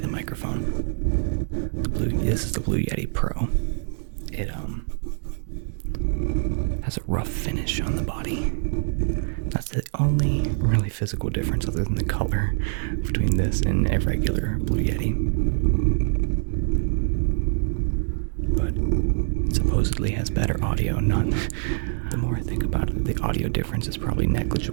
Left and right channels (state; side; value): silent; left; digital silence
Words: the microphone. This is the Blue Yeti Pro. It has a rough finish on the body. That's the only really physical difference other than the color between this and a regular Blue Yeti. But it supposedly has better audio. The more I think about it, the audio difference is probably